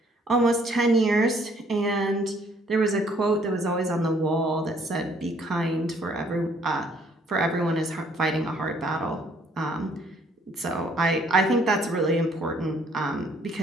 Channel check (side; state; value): both; normal; correlation 0.63